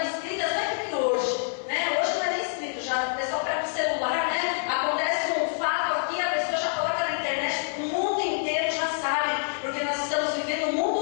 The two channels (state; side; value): silent; right; 60 dB below the other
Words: escritas, não é que hoje, né? Hoje não é nem escrito, já o pessoal pega o celular, né? Acontece um fato aqui, a pessoa já coloca na internet, o mundo inteiro já sabe, porque nós estamos vivendo um